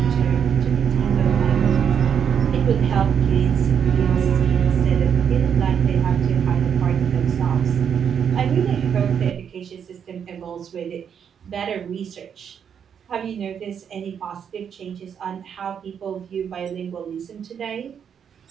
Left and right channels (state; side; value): quieter; left; 7.8 dB